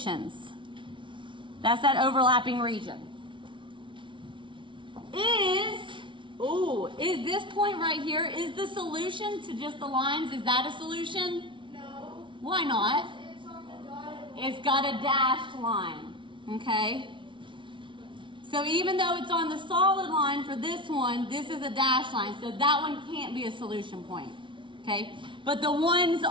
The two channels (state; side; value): late; left; 0.24 ms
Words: That's that overlapping region. Is this point right here, is the solution to just the lines, is that a solution? No. Why not? It's on the dotted. It's got a dashed line, okay? So even though it's on the solid line for this one, this is a dashed line, so that one can't be a solution point, okay? But the ones